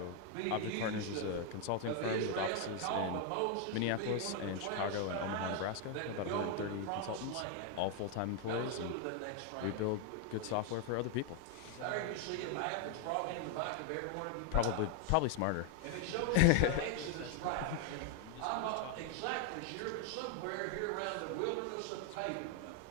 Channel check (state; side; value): different; both; correlation 0.00